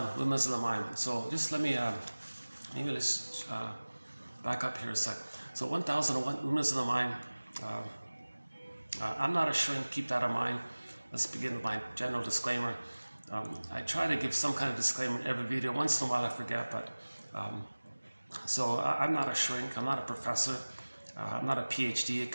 Windmills of the Mind. So just let me, maybe let's back up here a sec. So 1001, Windmills of the Mind. I'm not a shrink, keep that in mind. Let's begin with my general disclaimer. I try to give some kind of disclaimer in every video. Once in a while I forget, but so I'm not a shrink, I'm not a professor, I'm not a PhD, a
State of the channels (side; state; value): both; inverted; correlation -1.00